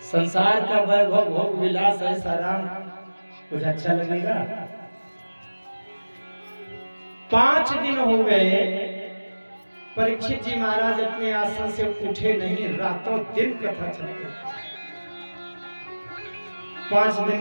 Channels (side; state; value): both; inverted; correlation -1.00